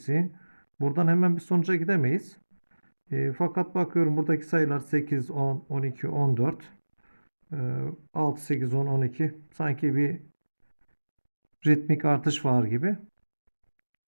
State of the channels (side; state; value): both; inverted; correlation -1.00